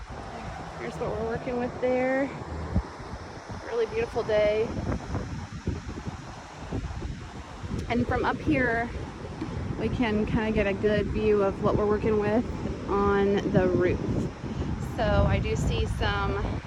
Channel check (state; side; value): identical; both; correlation 1.00